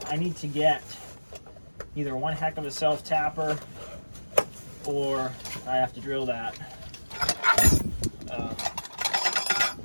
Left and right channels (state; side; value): inverted; both; correlation -1.00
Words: I need to get either one heck of a self-tapper or I have to drill that. I'm